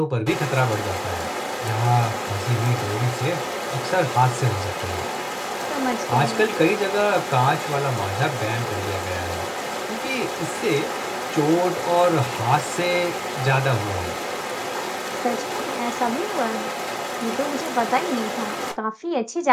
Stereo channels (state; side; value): identical; both; correlation 1.00